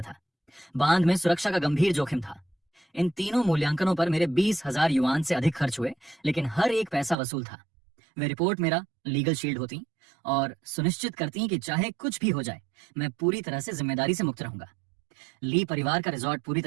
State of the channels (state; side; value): drops out; left; at 7.2 s